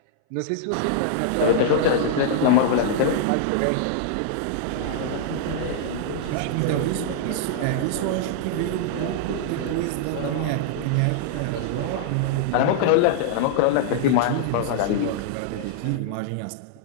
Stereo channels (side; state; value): both; different; correlation -0.01